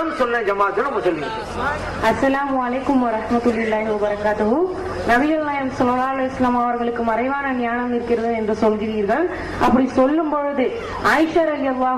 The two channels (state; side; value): identical; both; correlation 1.00